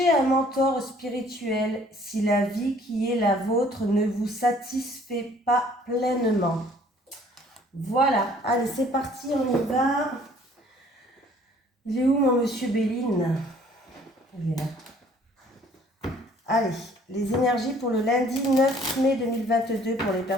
un mentor spirituel si la vie qui est la vôtre ne vous satisfait pas pleinement. Voilà, allez, c'est parti, on y va. Il est où mon monsieur Béline? Il est là. Allez, les énergies pour le lundi 9 mai 2022 pour les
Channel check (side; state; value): both; normal; correlation 0.57